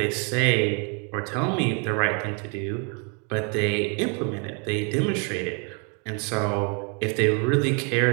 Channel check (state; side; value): quieter; left; 36.7 dB